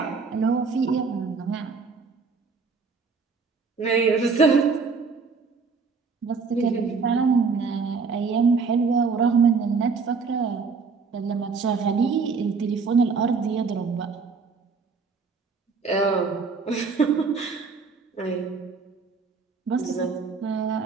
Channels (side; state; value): left; quieter; 4.9 dB